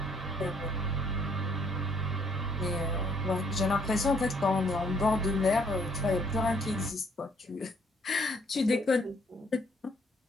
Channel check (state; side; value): normal; both; correlation 0.65